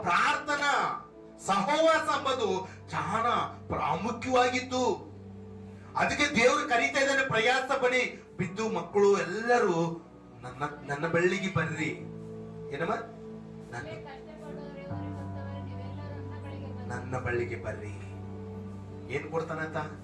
ಪ್ರಾರ್ಥನಾ ಸಹವಾಸ ಎಂಬುದು ಬಹಳ ಪ್ರಾಮುಖ್ಯವಾಗಿತ್ತು. ಅದಕ್ಕೆ ದೇವರು ಕರೀತಾ ಇದ್ದಾನೆ, ಪ್ರಯಾಸ ಪಡಿ ಬಿದ್ದು ಮಕ್ಕಳು ಎಲ್ಲರೂ ನನ್ನ ಬಳ್ಳಿಗೆ ಬರ್ರಿ. ಏನಮ್ಮ? ನನ್ನ ಬಳ್ಳಿಗೆ ಬರ್ರಿ. ಏನ್ ಕೊಡ್ತಾನಂತ?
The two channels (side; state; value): both; identical; correlation 1.00